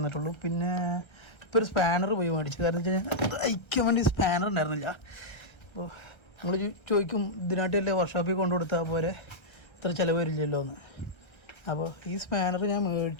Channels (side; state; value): right; late; 1.3 ms